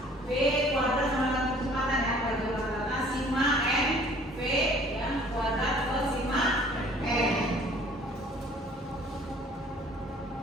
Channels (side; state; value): both; normal; correlation 0.54